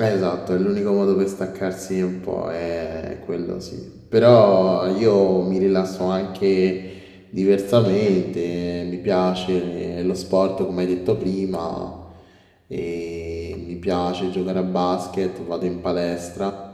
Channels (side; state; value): both; identical; correlation 1.00